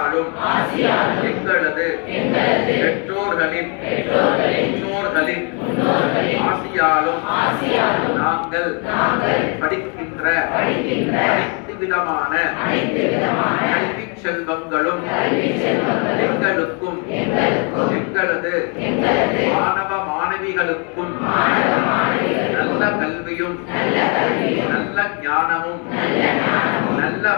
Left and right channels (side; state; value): right; quieter; 36.1 dB